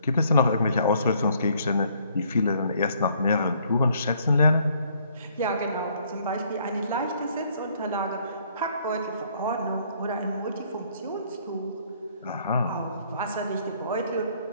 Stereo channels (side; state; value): both; inverted; correlation -0.65